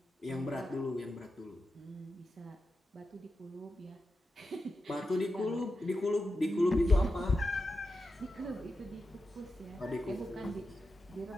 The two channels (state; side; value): normal; both; correlation 0.89